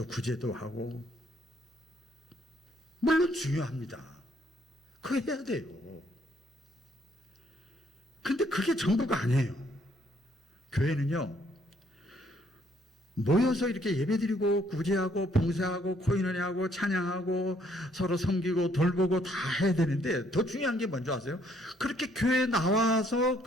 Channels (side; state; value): both; normal; correlation 0.67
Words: 구제도 하고 물론 중요합니다. 그거 해야 돼요. 근데 그게 전부가 아니에요. 교회는요, 모여서 이렇게 예배드리고 구제하고 봉사하고 코인원회하고 찬양하고 서로 섬기고 돌보고 다 해야 되는데 더 중요한 게 뭔지 아세요? 그렇게 교회에 나와서